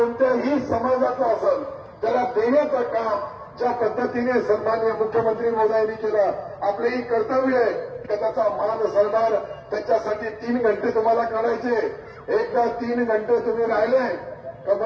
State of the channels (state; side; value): identical; both; correlation 1.00